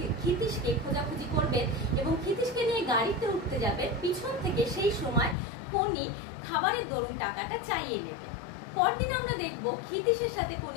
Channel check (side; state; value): right; drops out; at 5.4 s